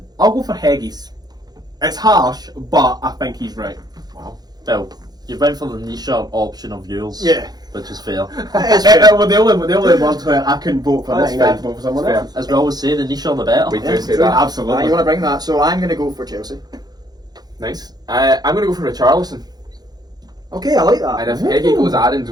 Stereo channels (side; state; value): left; late; 0.19 ms